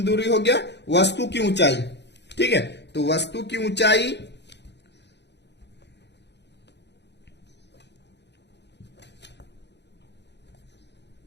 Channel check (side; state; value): right; late; 0.50 ms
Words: दूरी हो गया, वस्तु की ऊंचाई। ठीक है, तो वस्तु की ऊंचाई